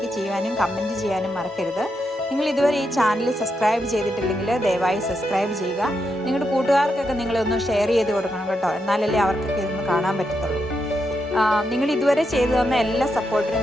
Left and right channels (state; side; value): normal; both; correlation 0.83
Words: ചെയ്യാനും കമൻറ്റ് ചെയ്യാനും മറക്കരുത്. നിങ്ങൾ ഇതുവരെ ഈ ചാനൽ സബ്സ്ക്രൈബ് ചെയ്തിട്ടില്ലെങ്കിൽ ദയവായി സബ്സ്ക്രൈബ് ചെയ്യുക. നിങ്ങളുടെ കൂട്ടുകാർക്കൊക്കെ നിങ്ങളൊന്ന് ഷെയർ ചെയ്ത് കൊടുക്കണം കേട്ടോ. എന്നാലല്ലേ അവർക്കൊക്കെ ഇതൊന്ന് കാണാൻ പറ്റത്തുള്ളൂ. നിങ്ങൾ ഇതുവരെ ചെയ്തു തന്ന എല്ലാ